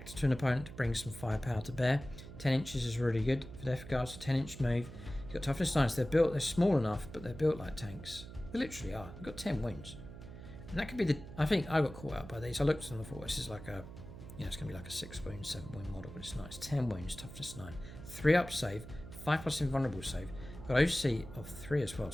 to an opponent, to bring some firepower to bear. 10 inches is really good for Death Guard, so 10-inch move. You've got toughness 9, so they're small enough, but they're built like tanks. They literally are. You've got 10 wounds. And that could be I think I got caught out by these. I looked at them and thought, this is like it's going to be like a 6 wound, 7 wound model, but it's not. It's 10 wounds, toughness 9. 3 up save, 5+ invulnerable save. Got OC of 3 as well,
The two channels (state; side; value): noise; right; hum, 13 dB below the sound